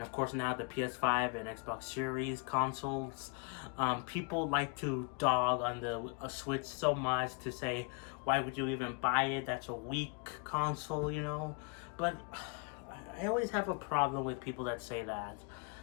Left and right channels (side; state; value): right; quieter; 33.1 dB